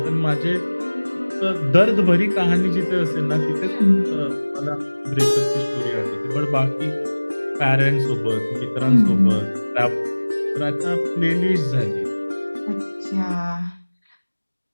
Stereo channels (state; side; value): inverted; both; correlation -1.00